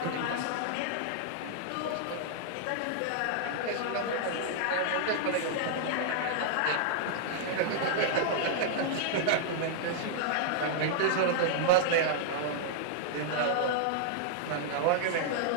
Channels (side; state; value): both; different; correlation -0.01